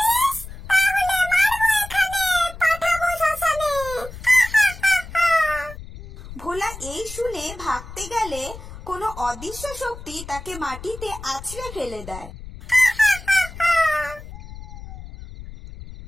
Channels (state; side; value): noise; left; rumble, 14 dB below the sound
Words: ভোলা এই শুনে ভাগতে গেলে কোনো অদৃশ্য শক্তি তাকে মাটিতে আছড়ে ফেলে দেয়।